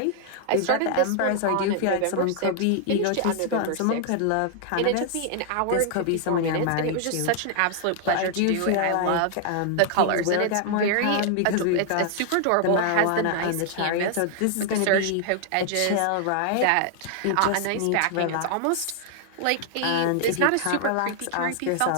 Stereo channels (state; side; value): different; both; correlation 0.00